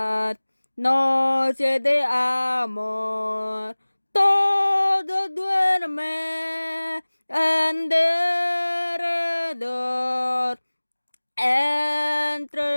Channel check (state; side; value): inverted; both; correlation -1.00